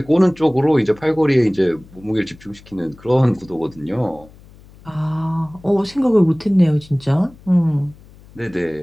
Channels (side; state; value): left; noise; hum, 24 dB below the sound